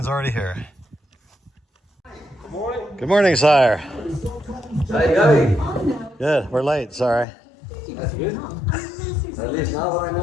already here. Good morning. Good morning, sire. How you going? Good, we're late, sorry. That's good. At least now I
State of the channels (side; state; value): right; drops out; at 7.2 s